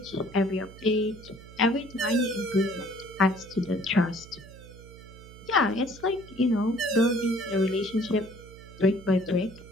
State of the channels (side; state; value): right; noise; hum, 18 dB below the sound